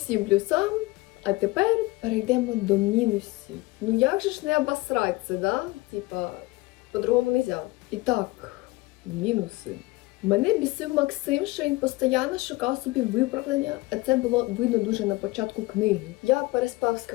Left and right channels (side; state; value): right; quieter; 21.2 dB